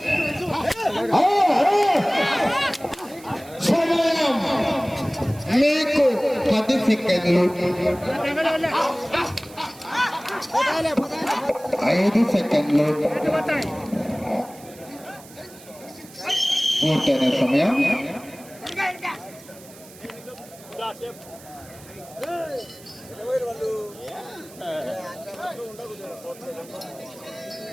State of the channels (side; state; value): right; noise; hiss, 21 dB below the sound